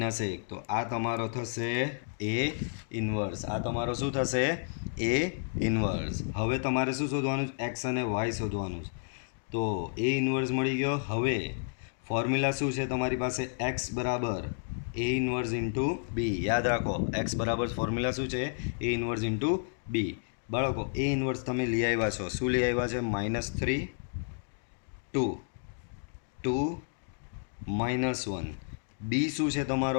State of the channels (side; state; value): right; silent; digital silence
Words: તો આ તમારો થશે એ ઇન્વર્સ. આ તમારો શું થશે? એ ઇન્વર્સ. હવે તમારે શું શોધવાનું છે? એક્સ અને વાય શોધવાનું છે. તો એ ઇન્વર્સ મળી ગયો. હવે ફોર્મ્યુલા શું છે તમારી પાસે? એક્સ બરાબર એ ઇન્વર્સ ઇન્ટુ બી. યાદ રાખો એક્સ બરાબર ફોર્મ્યુલા શું છે? એ ઇન્વર્સ ઇન્ટુ બી. બાળકો એ ઇન્વર્સ તમે લઈ આવ્યા છો. શું લઈ આવ્યા છે? -3 2 2 -1. બી શું છે